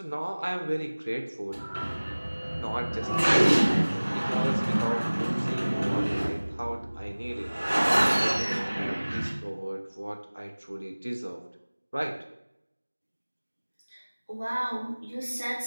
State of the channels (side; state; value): both; inverted; correlation -1.00